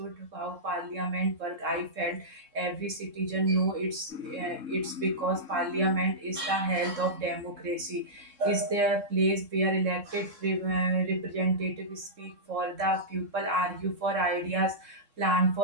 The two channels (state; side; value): late; left; 3.7 ms